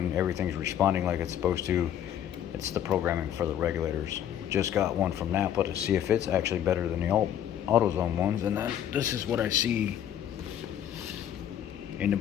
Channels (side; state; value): right; quieter; 10.2 dB